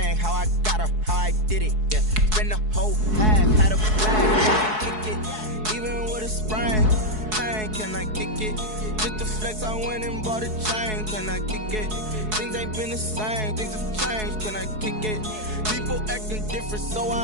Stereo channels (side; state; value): left; late; 4.7 ms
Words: how I got her, how I did it. Yeah, spend the whole half, had a blast, can I kick it? Even with a sprain, can I kick it? Just the flex, I went and bought a chain, can I kick it? Things ain't been the same, things have changed, can I kick it? People acting different, so